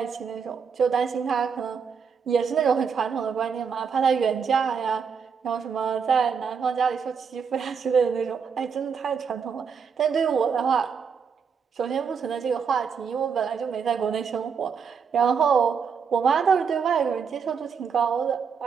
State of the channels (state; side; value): quieter; left; 6.3 dB